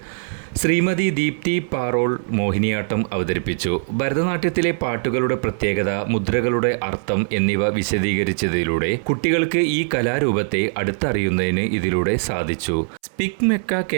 ശ്രീമതി ദീപ്തി പാറോൾ മോഹിനിയാട്ടം അവതരിപ്പിച്ചു. ഭരതനാട്യത്തിലെ പാട്ടുകളുടെ പ്രത്യേകത, മുദ്രകളുടെ അർത്ഥം എന്നിവ വിശദീകരിച്ചതിലൂടെ കുട്ടികൾക്ക് ഈ കലാരൂപത്തെ അടുത്തറിയുന്നതിന് ഇതിലൂടെ സാധിച്ചു. സ്പിക് മെക്ക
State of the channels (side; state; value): left; silent; 65 dB below the other